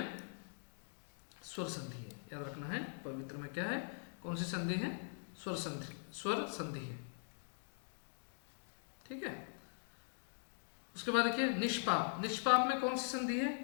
स्वर संधि है, याद रखना है। पवित्र में क्या है, कौन सी संधि है? स्वर संधि, स्वर संधि है। ठीक है। उसके बाद देखिए निष्पाप, निष्पाप में कौन सी संधि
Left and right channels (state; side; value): silent; right; digital silence